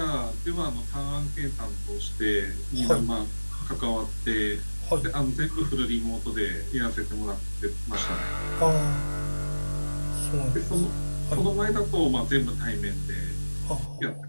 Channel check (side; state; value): both; inverted; correlation -1.00